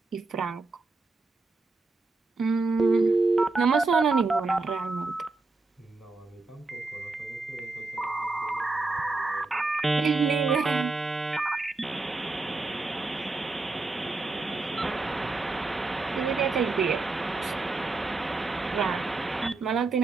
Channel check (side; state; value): left; quieter; 3.5 dB